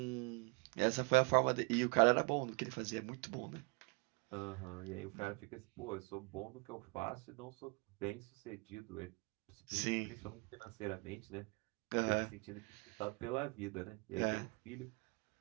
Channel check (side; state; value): left; quieter; 31.2 dB